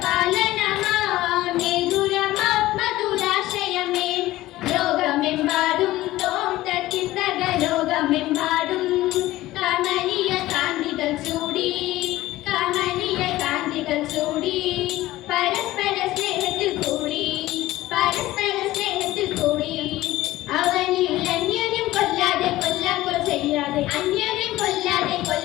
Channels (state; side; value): quieter; right; 16.7 dB